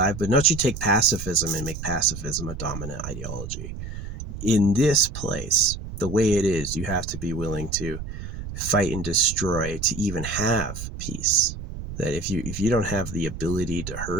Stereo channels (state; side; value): noise; right; rumble, 9 dB below the sound